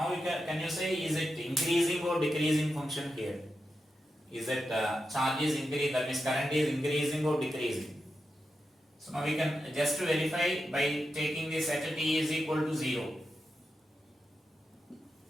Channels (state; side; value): normal; both; correlation 0.89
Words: can you say, is it increasing or decreasing function here? Is it charge is increasing, that means current is increasing or decreasing? So now we can just verify by taking this at t is equal to 0.